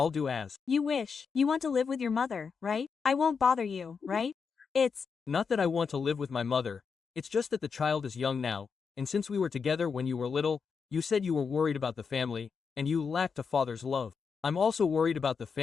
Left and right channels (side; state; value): right; quieter; 5.7 dB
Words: do as. You wish. You want to live with your mother, right? I won't bother you, right? It's Not that I want to live with my mother, it's just that the child is young now, and since we were together when you were little, you said you were worried about the family, and you lacked a father's love. I'm also worried about the